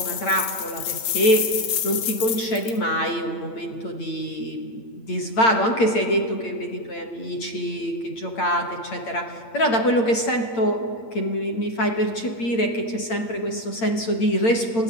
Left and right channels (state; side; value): late; right; 8.8 ms